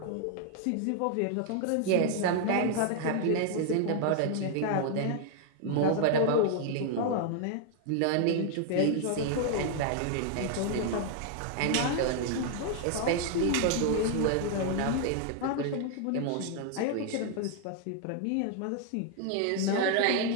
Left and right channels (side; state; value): both; different; correlation 0.00